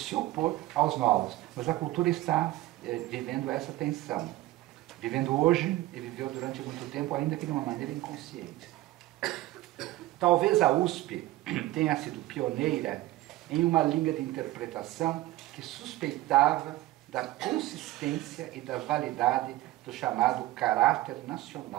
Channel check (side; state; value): left; quieter; 17.0 dB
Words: opor aos novos. Mas a cultura está vivendo essa tensão. Vivendo hoje e viveu durante muito tempo, ainda que de uma maneira inconsciente. Talvez a USP tenha sido pioneira em uma linha de interpretação que suspeitava da consistência e da validade do chamado caráter